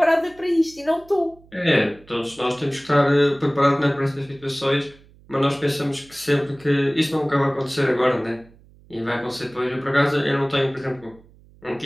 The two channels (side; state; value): right; noise; hum, 26 dB below the sound